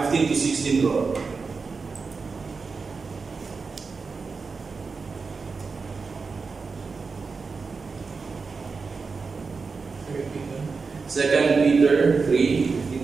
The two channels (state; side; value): quieter; left; 4.7 dB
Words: bro. 2 Peter